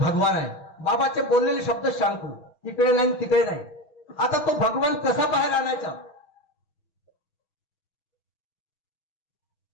आहे. बाबाचे बोललेले शब्द सांगतो, इकडे नाही तिकडे नाही. आता तो भगवान कसा बाहेर आणायचा.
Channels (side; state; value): right; late; 6.3 ms